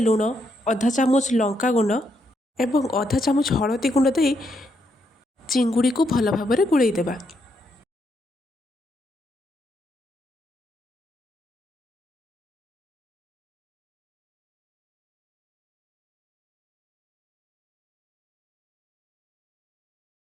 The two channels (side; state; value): both; normal; correlation 0.78